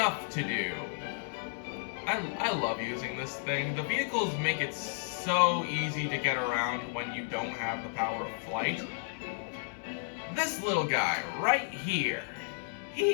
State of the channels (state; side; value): silent; right; 56 dB below the other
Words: to do. I love using this thing. The vehicles make it so easy to get around when you don't have the power of flight. This little guy right here,